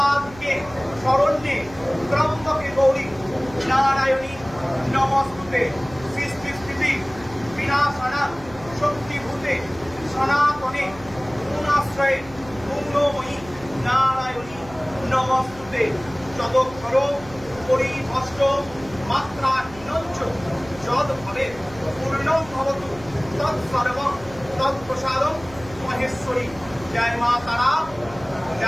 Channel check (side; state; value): right; noise; hum, 18 dB below the sound